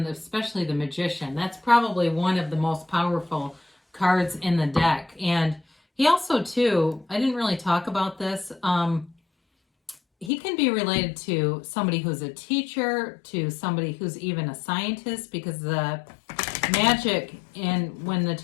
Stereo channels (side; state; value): right; drops out; at 10.3 s